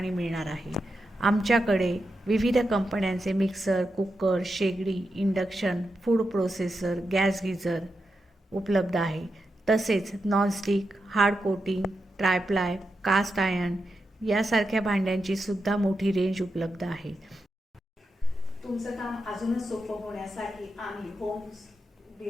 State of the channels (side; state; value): both; normal; correlation 0.87